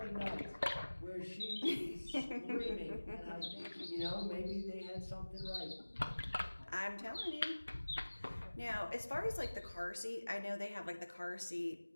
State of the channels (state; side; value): inverted; both; correlation -1.00